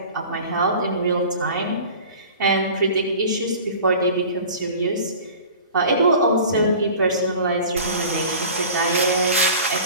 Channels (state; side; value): inverted; both; correlation -0.41